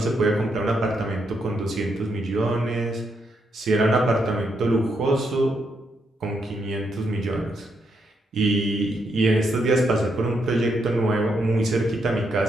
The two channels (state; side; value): normal; both; correlation 0.79